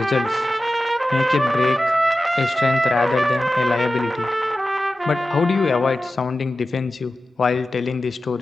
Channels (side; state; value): both; normal; correlation 0.93